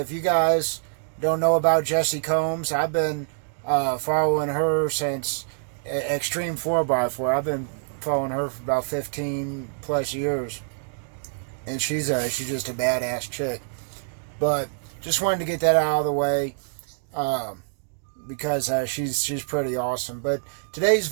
you guys don't know about Jessie Combs, I've been following her since Extreme 4x4. I've been following her for about 15 plus years, and she's just a badass chick. But just wanted to get that out of the way because she's pretty awesome. But today's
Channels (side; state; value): left; silent; digital silence